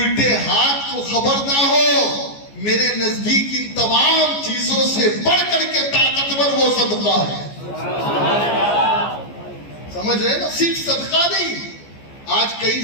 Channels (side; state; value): right; late; 14 ms